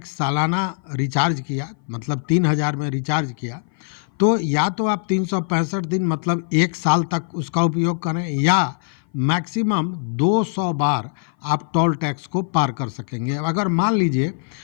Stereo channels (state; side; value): silent; right; 58 dB below the other